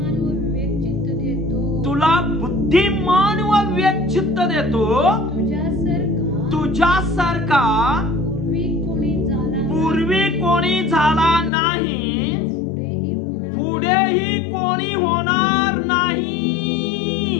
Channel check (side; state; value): right; drops out; at 11.5 s